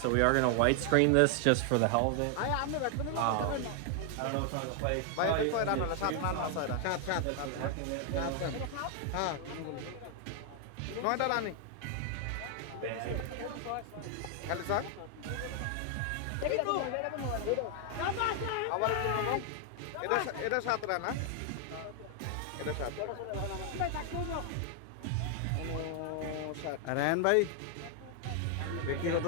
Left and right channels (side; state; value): both; different; correlation 0.00